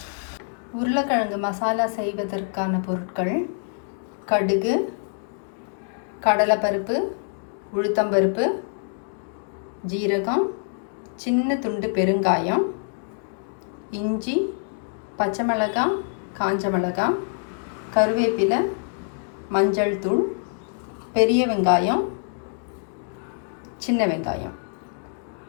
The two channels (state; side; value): silent; right; 62 dB below the other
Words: உருளைக்கிழங்கு மசாலா செய்வதற்கான பொருட்கள்: கடுகு, கடலைப்பருப்பு, உளுத்தம்பருப்பு, ஜீரகம், சின்ன துண்டு பெருங்காயம், இஞ்சி, பச்சை மிளகாய், காஞ்ச மிளகாய், கருவேப்பிலை, மஞ்சள் தூள், பெரிய வெங்காயம், சின்ன வெங்காயம்.